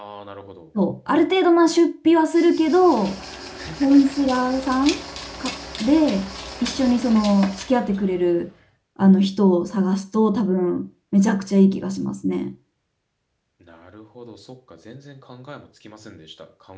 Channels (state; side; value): identical; both; correlation 1.00